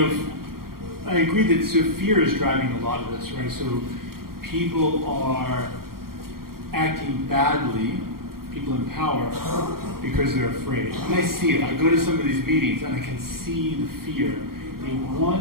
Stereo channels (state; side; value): late; left; 0.93 ms